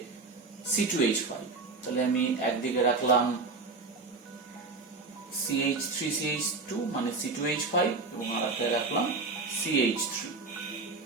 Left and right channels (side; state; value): left; quieter; 3.8 dB